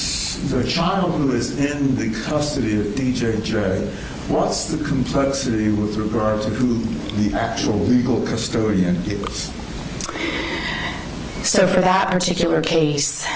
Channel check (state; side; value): identical; both; correlation 1.00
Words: child who is in the custody of DJJ, what's the complexity with regard to who the actual legal custodian is? So for that particular case,